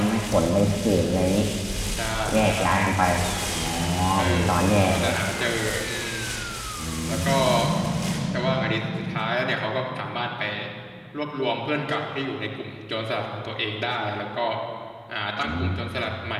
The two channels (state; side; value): identical; both; correlation 1.00